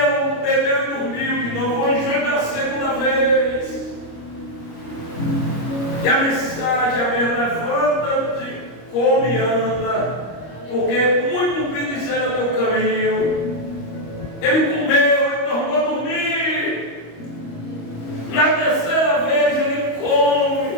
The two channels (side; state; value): right; late; 25 ms